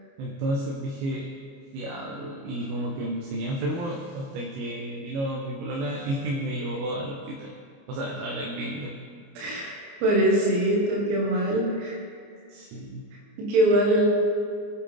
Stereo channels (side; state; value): left; late; 29 ms